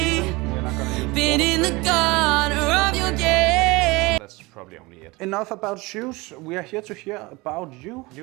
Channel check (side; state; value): left; quieter; 23.5 dB